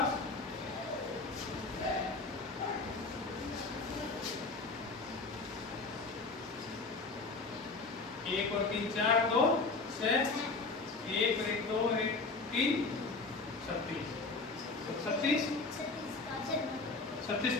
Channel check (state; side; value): quieter; right; 3.9 dB